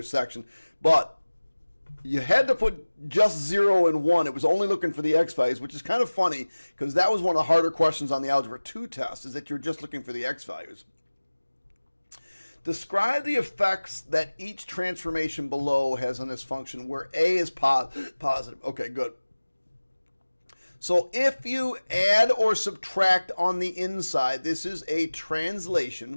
But you had to put just 0 and 1. It was only looking for the x values, which is kind of funny because that was one of the harder questions on the Algebra 2 test, is that you're just looking for the x values. Describe the effects that each transformation below has on this function where a is positive. Okay, good. So if you add or subtract on the inside, this is a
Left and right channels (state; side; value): inverted; both; correlation -1.00